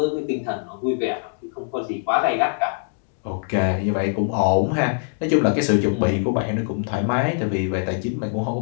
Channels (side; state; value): right; silent; digital silence